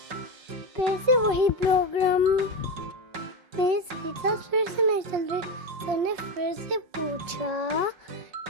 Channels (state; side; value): late; left; 5.5 ms